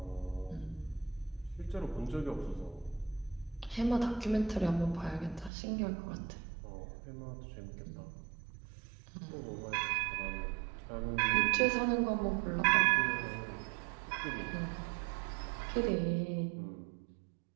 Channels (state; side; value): drops out; left; at 5.5 s